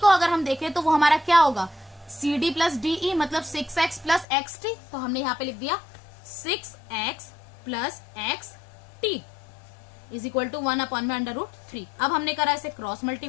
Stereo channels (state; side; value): drops out; right; at 4.2 s